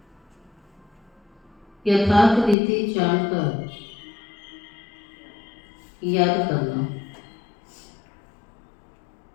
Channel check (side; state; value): right; drops out; at 2.6 s